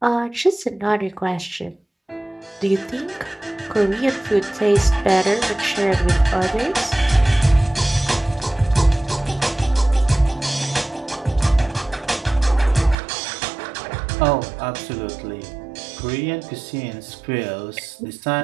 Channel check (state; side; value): drops out; left; at 13.0 s